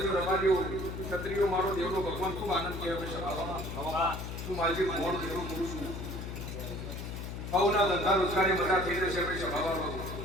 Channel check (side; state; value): left; noise; hum, 6 dB below the sound